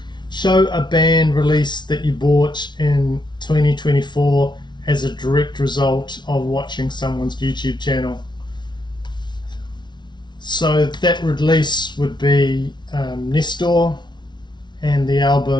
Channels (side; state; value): right; late; 0.21 ms